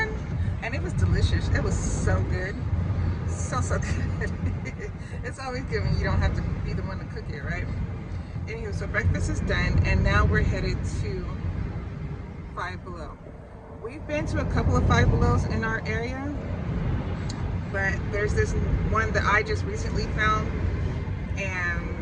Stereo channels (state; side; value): identical; both; correlation 1.00